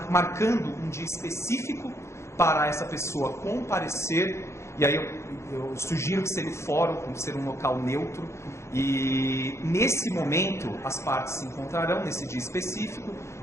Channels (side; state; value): right; late; 0.13 ms